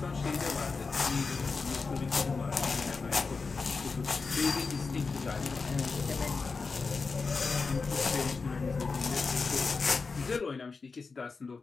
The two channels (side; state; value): right; quieter; 4.5 dB